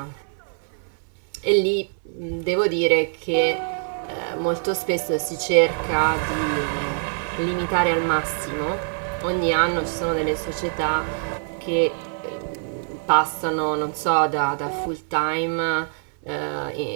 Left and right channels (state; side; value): silent; left; 61 dB below the other